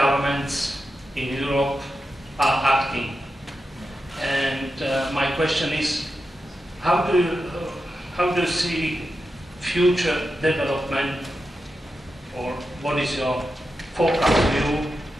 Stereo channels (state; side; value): normal; both; correlation 0.89